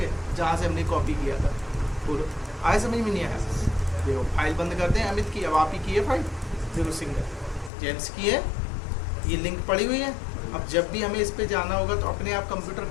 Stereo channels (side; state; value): right; drops out; at 7.7 s